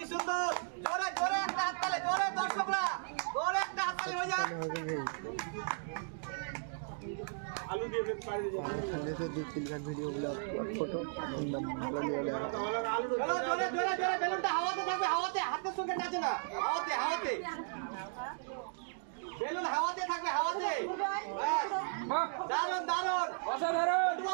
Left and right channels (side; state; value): left; silent; digital silence